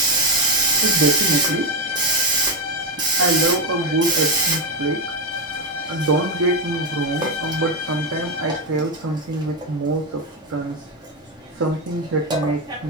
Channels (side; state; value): both; normal; correlation 0.08